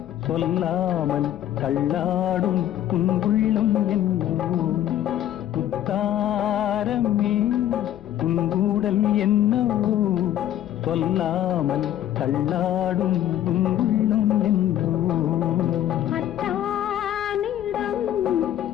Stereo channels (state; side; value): quieter; right; 11.9 dB